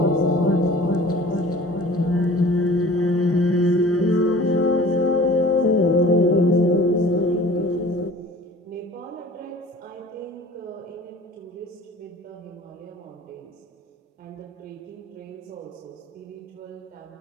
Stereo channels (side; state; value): both; normal; correlation 0.45